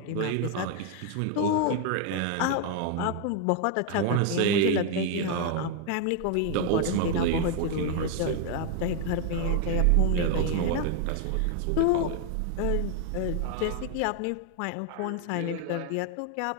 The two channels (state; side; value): different; both; correlation 0.00